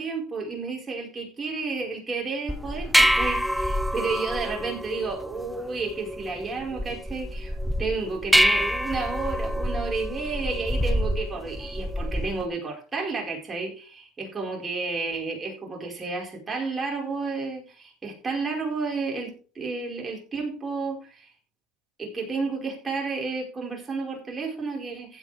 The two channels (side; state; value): both; normal; correlation 0.84